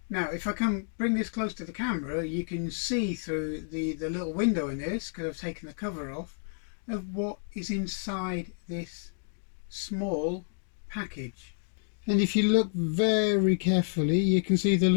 Now, if I can bring this close to the camera, you can see through the little window in this, because I've taken the cover off, of what is inside this small package. And if you look very carefully, you can see the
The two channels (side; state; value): right; silent; digital silence